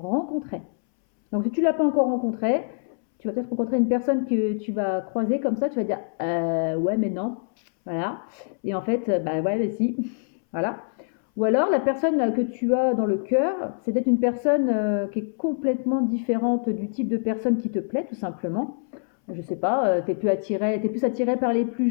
Donc si tu ne l'as pas encore rencontré, tu vas peut-être rencontrer une personne que tu vas croiser comme ça, tu vas dire ouais mais non, voilà. Et en fait, bah ouais mais si, voilà. Ou alors la personne que tu as dans le cœur, c'est peut-être une personne qui est complètement différente du type de personne qui te plaît tout simplement. Je sais pas, tu es plus attiré par les plus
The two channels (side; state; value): right; silent; 62 dB below the other